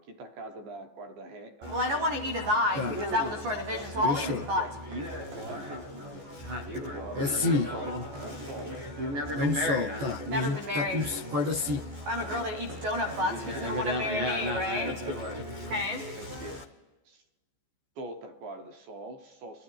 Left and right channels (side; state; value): left; late; 14 ms